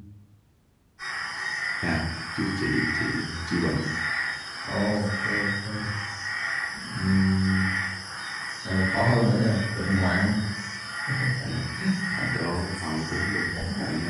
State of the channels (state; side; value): identical; both; correlation 1.00